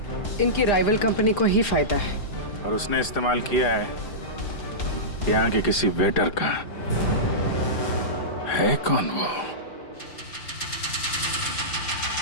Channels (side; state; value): right; late; 4.9 ms